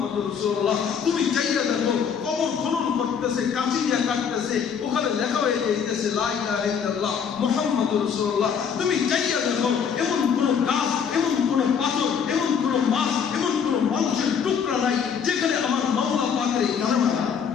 রাসূলুল্লাহ, তুমি যাইয়া দেখো কবর খনন করতেছে, কাঁচি দিয়া কাটতেছে, ওখানে লেখা হয়ে যাইতেছে লা ইলাহা ইল্লাল্লাহ মুহাম্মাদুর রাসূলুল্লাহ। তুমি যাইয়া দেখো এমন কোন গাছ, এমন কোন পাথর, এমন কোন মাছ, এমন কোন মানুষের টুকরা নাই যেখানে আমার মাওলা পাকের এই কালেমা।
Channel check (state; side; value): quieter; right; 7.1 dB